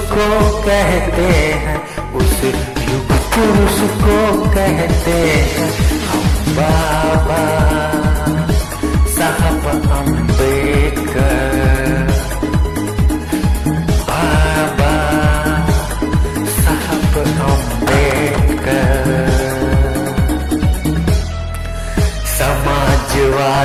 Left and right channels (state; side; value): identical; both; correlation 1.00